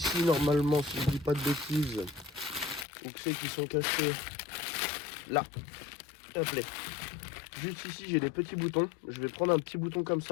normalement, si je dis pas de bêtises, ou que c'est qui sont cachés là. Hop là. Juste ici j'ai des petits boutons. Je vais prendre un petit bouton comme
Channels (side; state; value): right; drops out; at 2.9 s